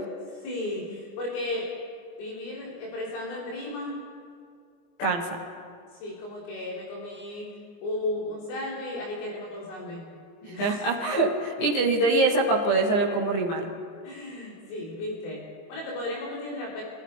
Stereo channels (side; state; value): right; late; 24 ms